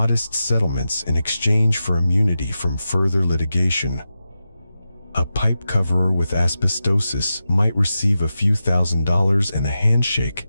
settlements in exchange for immunity from further litigation. A pipe coverer with asbestosis might receive a few $1,000s and a handshake,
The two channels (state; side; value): inverted; both; correlation -0.91